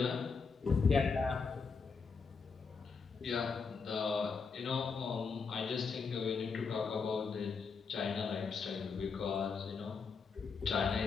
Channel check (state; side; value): quieter; right; 5.2 dB